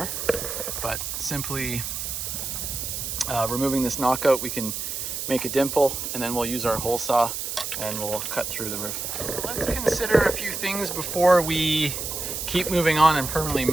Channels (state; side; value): noise; right; hiss, 4 dB below the sound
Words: But simply removing this knockout, we can make a dimple, and then we'll use our hole saw and we'll cut through the roof. So let's consider a few things before we keep moving on and permanently